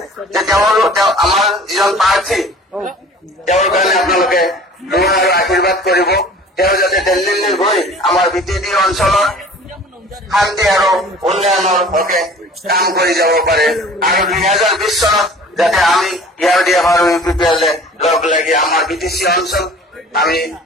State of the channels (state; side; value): normal; both; correlation 0.46